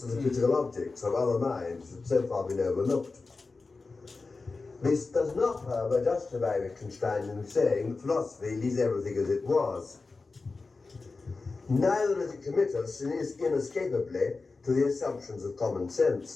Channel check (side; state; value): right; quieter; 3.9 dB